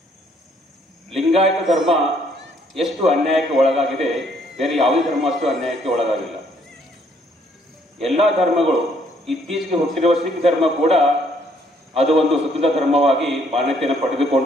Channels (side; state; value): both; normal; correlation 0.66